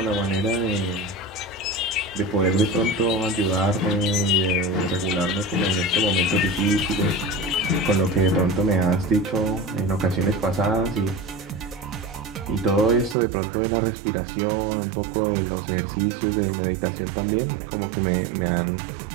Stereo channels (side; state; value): left; drops out; at 13.2 s